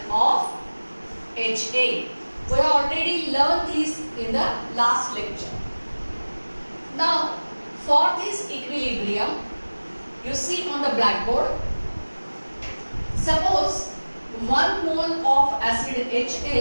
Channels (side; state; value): both; inverted; correlation -1.00